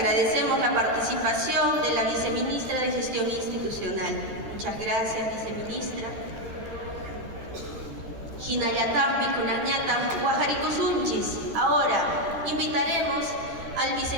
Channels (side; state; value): left; late; 13 ms